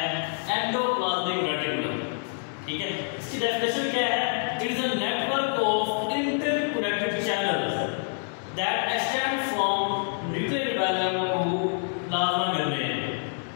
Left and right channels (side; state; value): right; silent; 56 dB below the other